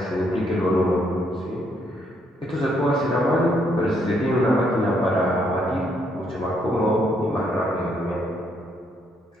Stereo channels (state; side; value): normal; both; correlation 0.72